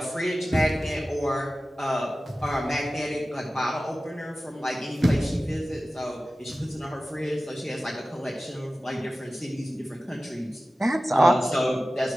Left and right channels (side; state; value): both; normal; correlation 0.95